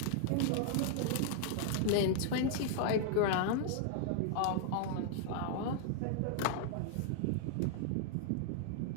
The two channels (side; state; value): both; different; correlation -0.01